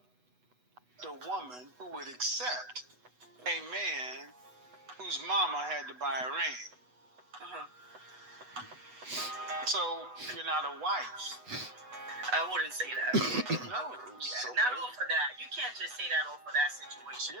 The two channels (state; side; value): late; left; 8.1 ms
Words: The woman who would accept a man whose mama had to buy a ring. Uh-huh. So you're not a wife. I wouldn't say that. No, Yeah, not all for that. You can't just say that all for that situation.